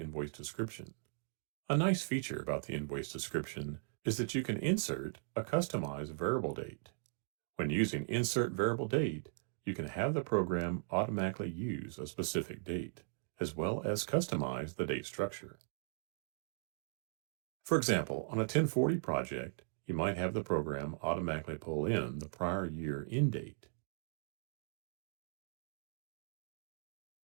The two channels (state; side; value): silent; left; digital silence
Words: description. A nice feature about the invoice description is that you can insert a customized variable date. When using Insert Variable Date, you can have the program automatically use a specific date, as well as customize the date structure. For example, on a 1040 project, you might have the program automatically pull in the prior year end date.